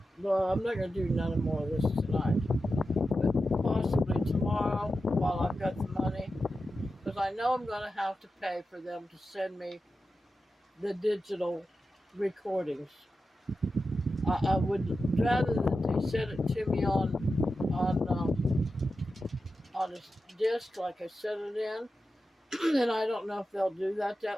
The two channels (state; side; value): normal; both; correlation 0.91